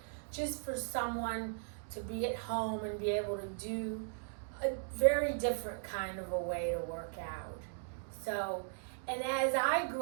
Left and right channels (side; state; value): left; silent; digital silence